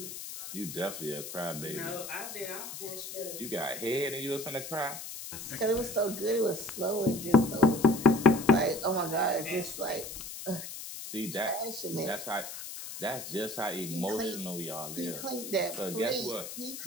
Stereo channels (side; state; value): left; noise; hiss, 9 dB below the sound